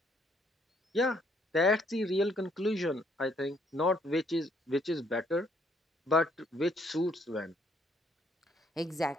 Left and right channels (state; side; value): normal; both; correlation 0.67